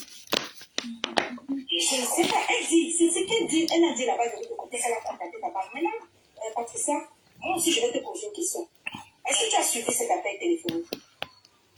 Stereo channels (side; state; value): both; identical; correlation 1.00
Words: Je ne sais pas, elle dit, c'est ce qu'elle dit, elle a dit là-bas de l'autre côté, elle a contacté ta banque. Maintenant, Patricia, moi aussi je vais te poser une question. Est-ce que tu as suivi cet appel téléphonique?